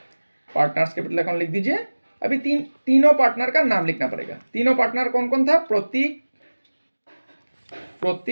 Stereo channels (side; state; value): both; inverted; correlation -1.00